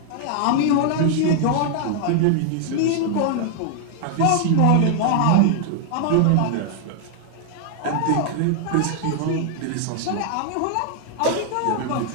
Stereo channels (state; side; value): different; both; correlation 0.00